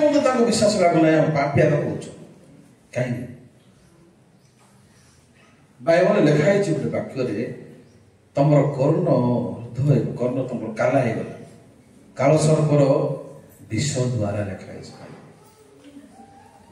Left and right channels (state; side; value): identical; both; correlation 1.00